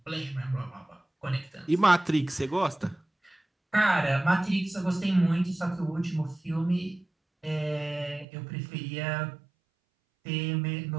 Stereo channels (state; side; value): drops out; left; at 8.2 s